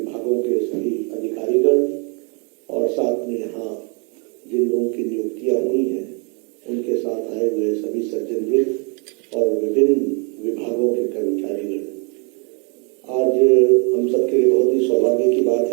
के सभी अधिकारीगण और साथ में यहाँ जिन लोगों की नियुक्तियाँ हुई हैं उनके साथ आए हुए सभी सज्जनवृंद और विभिन्न विभागों के कर्मचारीगण, आज हम सबके लिए बहुत ही सौभाग्य की बात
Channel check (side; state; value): left; quieter; 35.7 dB